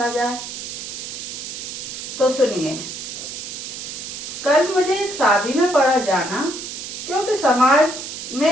जाए। तो सुनिए, कल मुझे एक शादी में पड़ा जाना, क्योंकि समाज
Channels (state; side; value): noise; right; hiss, 8 dB below the sound